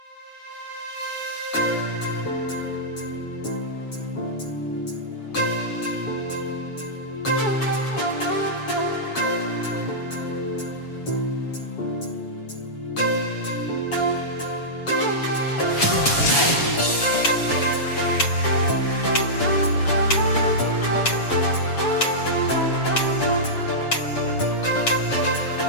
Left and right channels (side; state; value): right; late; 7.1 ms